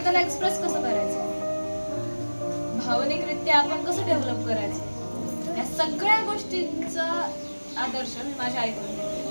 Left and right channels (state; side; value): inverted; both; correlation -1.00